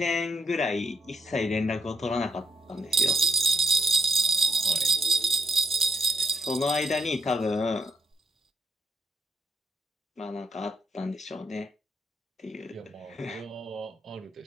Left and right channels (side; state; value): both; normal; correlation 0.78